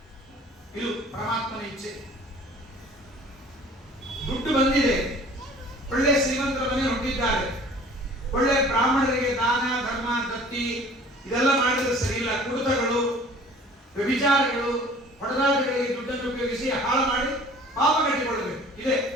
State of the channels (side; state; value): both; normal; correlation 0.49